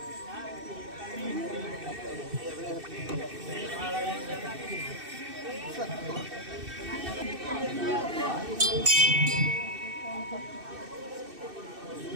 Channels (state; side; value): late; left; 2.6 ms